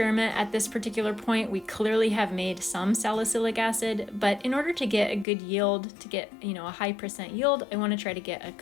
at this particular point. We clearly have made some salicylic acid, but in order to get a good yield, to get a high % yield, I want to try to get a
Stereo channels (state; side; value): drops out; right; at 5.2 s